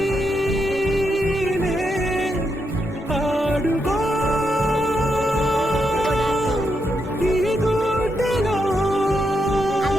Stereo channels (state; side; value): normal; both; correlation 0.82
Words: ఆడుకో ఈ గుండెలో